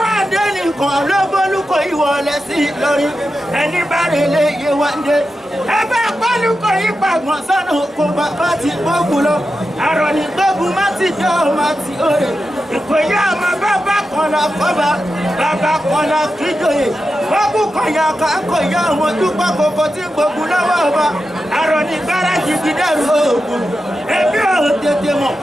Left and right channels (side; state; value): both; normal; correlation 0.90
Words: àdé ní kan lóbólúkọ ìwọlẹ̀ sí Ìlọrin ẹni bá rè lè yé wá dé ẹ bá pálúkọ yìí pàgbọ́n sọ́nà kó bàbá ti gbógun lọ àrọ̀ ní gbógun má ti jẹ́ ọmọ àti òye ìkòyí àmọ́ bàbá kan la fọ́ba bàbá kan la kíjòyè gbógun kan yà ká kò yá ọmọ dúpọ̀ kòkò tí gbógun lọ́wọ́ ọba àrọ̀ ní gbáradì gidẹ́rù oògùn ẹbí ò tètè mọ̀